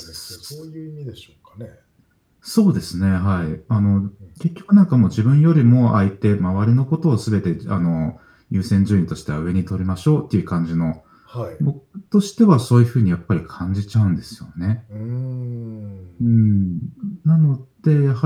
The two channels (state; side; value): identical; both; correlation 1.00